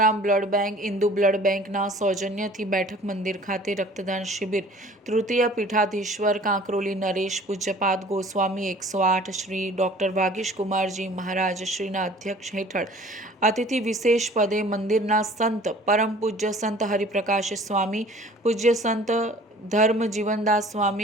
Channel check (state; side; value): normal; both; correlation 0.49